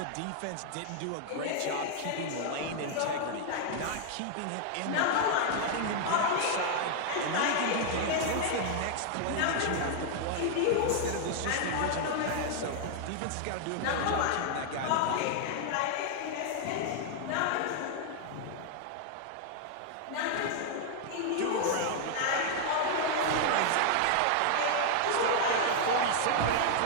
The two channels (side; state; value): both; different; correlation 0.00